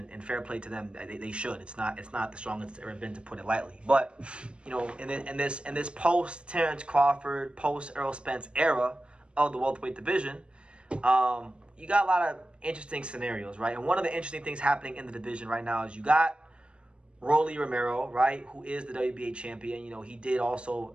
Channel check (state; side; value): late; left; 0.057 ms